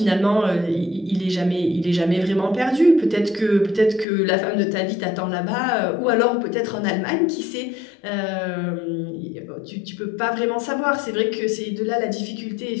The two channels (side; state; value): right; drops out; at 4.0 s